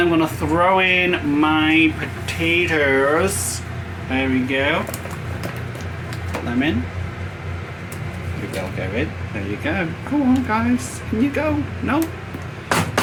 I'm going to throw in my potatoes. There we go. Put them in. They'll go in. There you go. Go on, guys. Can you go? No.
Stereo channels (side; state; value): both; identical; correlation 1.00